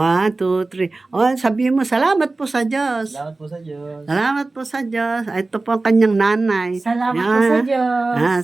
2, 3. Sabihin mo, salamat po sa Diyos. Salamat po sa Diyos. Salamat po sa Diyos. Ito po ang kanyang nanay. Salamat po sa Diyos.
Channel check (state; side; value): quieter; left; 3.4 dB